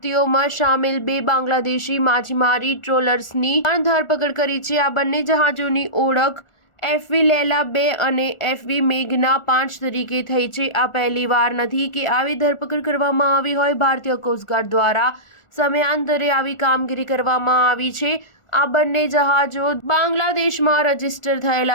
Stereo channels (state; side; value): late; right; 1.4 ms